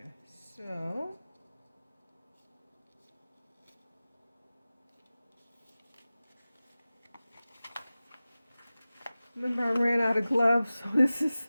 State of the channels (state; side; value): inverted; both; correlation -0.97